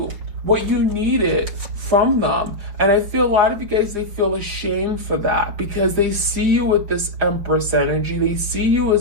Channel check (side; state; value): left; late; 5.8 ms